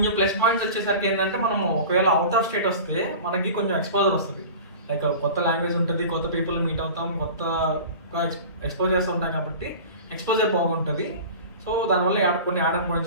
ప్లస్ పాయింట్స్ వచ్చేసరికి ఏంటంటే మనము ఒకవేళ అవుట్ ఆఫ్ స్టేట్ వస్తే మనకి కొంచెం ఎక్స్పోజర్ వస్తుంది. లైక్ కొత్త లాంగ్వేజ్ ఉంటుంది, కొత్త పీపుల్ మీట్ అవుతాం, కొత్తగా ఎక్స్పోజ్ చేస్తూ ఉంటాం కాబట్టి ఎక్స్పోజర్ బాగుంటుంది. సో దానివల్ల కొన్ని యాడ్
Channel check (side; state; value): both; inverted; correlation -0.37